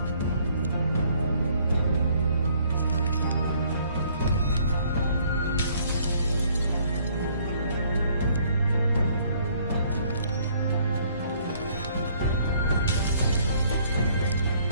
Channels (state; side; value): inverted; both; correlation -0.63